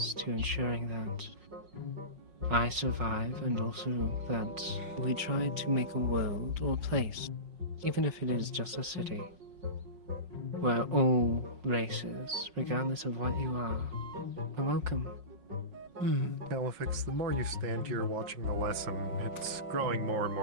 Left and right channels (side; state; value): left; late; 5.5 ms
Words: to ensuring that I survive, and also that we try to make a world or a place, even if it is just a city, where all races, regardless of what you are welcome. Califix, the more you stand here watching the lesson, it's growing more and